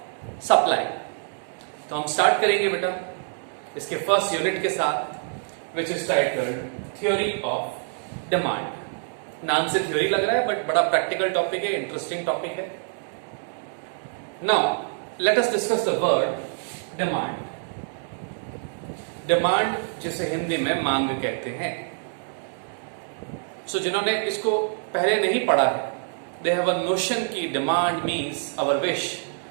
supply. तो हम स्टार्ट करेंगे बेटा इसके फर्स्ट यूनिट के साथ which is titled theory of demand. नाम से थ्योरी लग रहा है बट बड़ा प्रैक्टिकल टॉपिक है, इंटरेस्टिंग टॉपिक है। Now, let us discuss the word demand. Demand जिसे हिंदी में मांग कहते हैं। जिन्होंने इसको पहले नहीं पढ़ा है, they have a notion कि demand means our wish,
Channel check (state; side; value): silent; left; digital silence